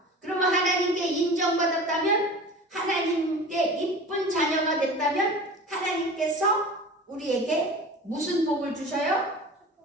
그러면 하나님께 인정받았다면, 하나님께 이쁜 자녀가 됐다면 하나님께서 우리에게 무슨 복을 주셔요?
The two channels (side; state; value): both; normal; correlation 0.37